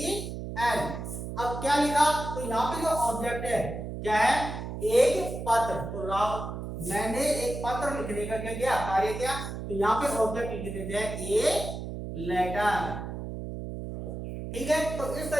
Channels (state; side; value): noise; right; hum, 7 dB below the sound